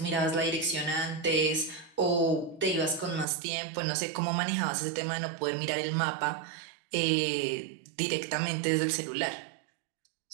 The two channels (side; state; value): left; drops out; at 3.2 s